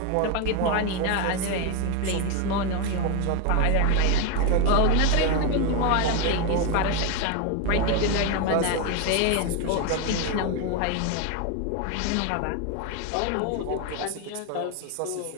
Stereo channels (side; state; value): both; different; correlation 0.02